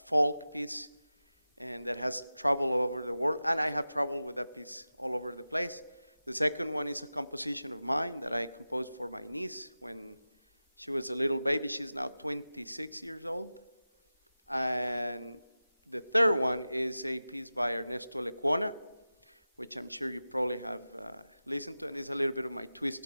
folk piece. and that has traveled all over the world, and I have traveled with that piece all over the place. The second one is a composition of mine that I composed for my niece when she was a little baby. She's now 26 years old. And the third one is a piece by Ernesto Lecuona, which I'm sure you probably have listened to, and there's a little bit of my twist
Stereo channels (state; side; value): inverted; both; correlation -0.95